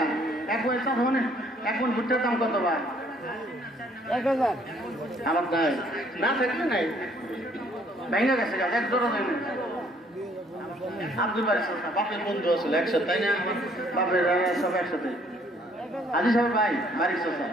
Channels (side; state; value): both; normal; correlation 0.63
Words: এক মন ভুট্টার দাম কত ভাই? 1000। আমার নাই, না থাকলে নাই, ভেঙে গেছে গাছ, এক জোড়া দেয় না। আব্দুল বাড়ি বাপের বন্ধু আসলে একসাথে, তাই না? বাপের সব একসাথে। আজি সাহেব ভাই বাড়ির চোষা,